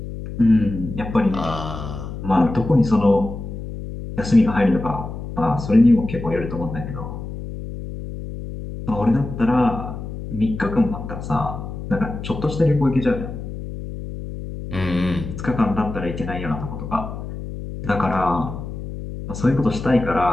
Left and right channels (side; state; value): left; noise; hum, 9 dB below the sound